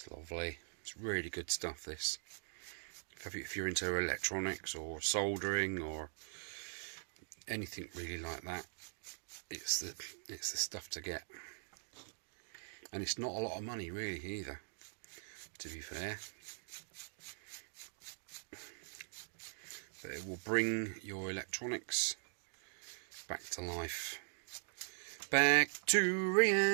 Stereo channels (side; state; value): left; silent; digital silence